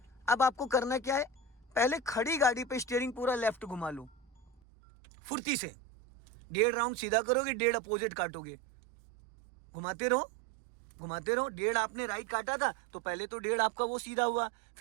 अब आपको करना क्या है, पहले खड़ी गाड़ी पे स्टीयरिंग पूरा लेफ्ट घुमा लो, फुर्ती से 1.5 राउंड सीधा करोगे, 1.5 अपोजिट काटोगे, घुमाते रहो घुमाते रहो। 1.5 आपने राइट काटा था तो पहले तो 1.5 आपका वो सीधा हुआ,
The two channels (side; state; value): left; drops out; at 4.6 s